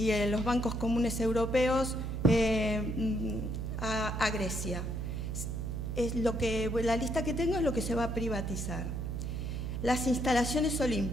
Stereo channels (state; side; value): noise; right; hum, 3 dB below the sound